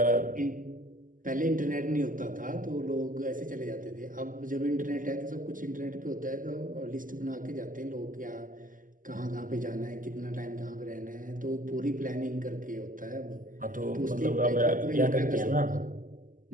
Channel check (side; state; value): left; late; 0.39 ms